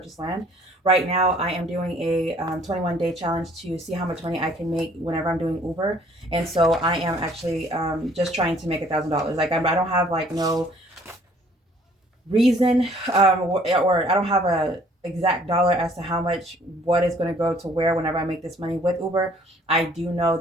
land. Right now, I am doing a 21-day challenge to see how much money I can make whenever I'm doing Uber. And so I am actually just trying to make $1,000. Like I don't have like no reason or I don't have a exact dollar as to how much what is going to go to where whenever I make this money with Uber. I do know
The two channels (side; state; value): both; normal; correlation 0.58